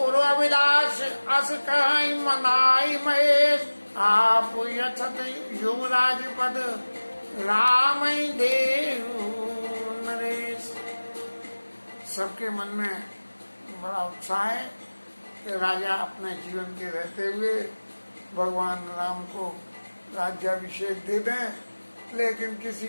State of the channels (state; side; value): inverted; both; correlation -1.00